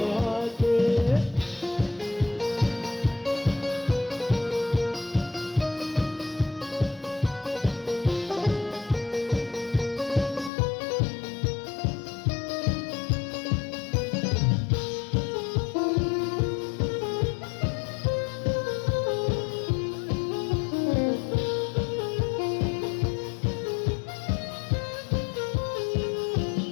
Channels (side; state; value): right; drops out; at 10.5 s